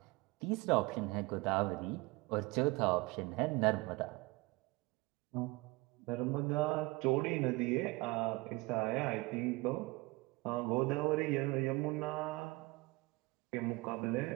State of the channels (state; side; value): quieter; left; 23.6 dB